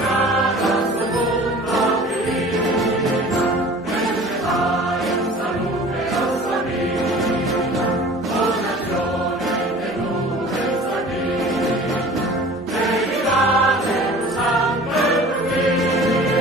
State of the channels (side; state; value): both; normal; correlation 0.44